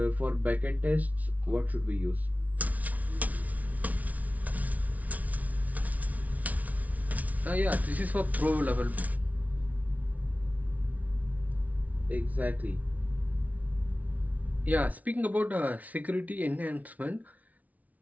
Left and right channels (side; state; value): left; late; 0.072 ms